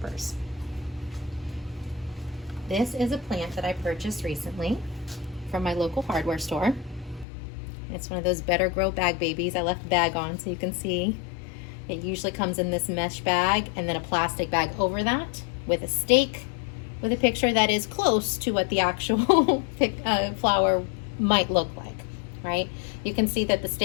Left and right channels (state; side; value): drops out; right; at 7.2 s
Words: This is a plant that I purchased recently from my local hardware store. It's one of those Better Grow bag babies. I left the bag on so you can see. It usually comes in this mesh bag and then a plastic bag over that with a stake with a picture that is close to what the actual flower might look like, right? You can see that the